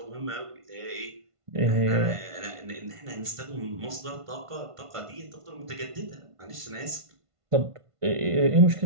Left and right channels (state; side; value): late; left; 1.5 ms